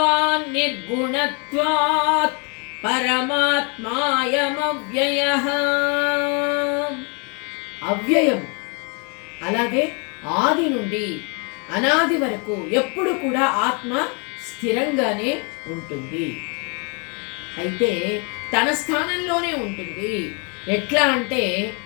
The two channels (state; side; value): quieter; right; 35.0 dB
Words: నిర్గుణత్వాత్ పరమాత్మాయమవ్యయః. అవ్యయము, అలాగే ఆది నుండి అనాది వరకు ఎప్పుడు కూడా ఆత్మ స్థిరంగానే ఉంటుంది. అయితే తన స్థానంలోనే ఉంటుంది. ఎట్లా అంటే